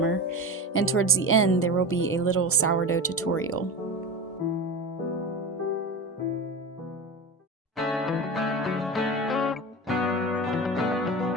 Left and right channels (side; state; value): both; normal; correlation 0.27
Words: and towards the end there will be a little sourdough tutorial.